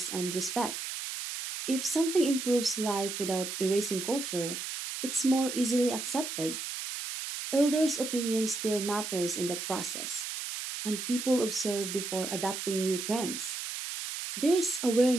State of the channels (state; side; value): noise; right; hiss, 6 dB below the sound